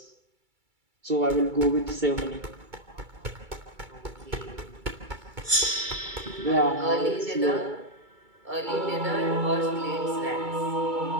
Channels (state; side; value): late; left; 2.3 ms